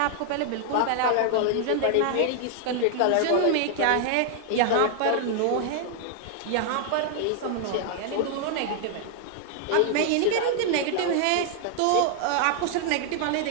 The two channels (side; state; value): both; different; correlation 0.00